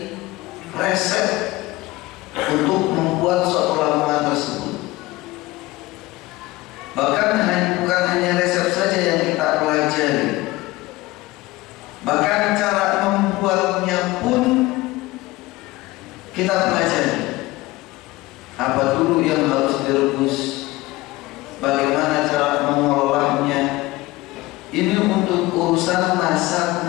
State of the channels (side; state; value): right; quieter; 19.6 dB